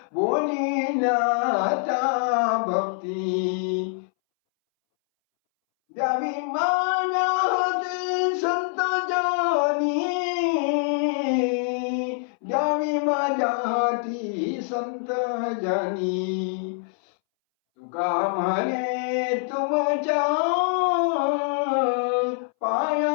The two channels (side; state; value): right; silent; 62 dB below the other